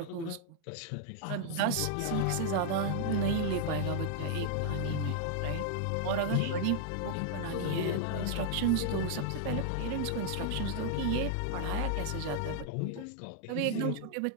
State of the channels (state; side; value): different; both; correlation -0.01